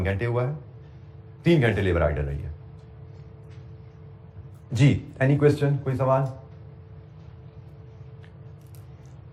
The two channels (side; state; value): both; identical; correlation 1.00